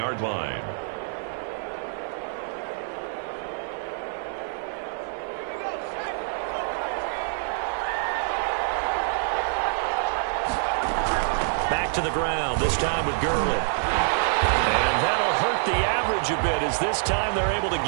line. Back to the ground, this time with Gurley. And that'll hurt the average a bit as this time they're able to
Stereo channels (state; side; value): silent; left; 59 dB below the other